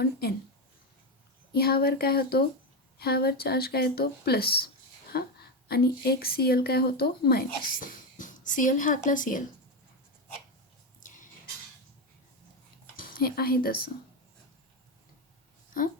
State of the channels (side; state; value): both; normal; correlation 0.11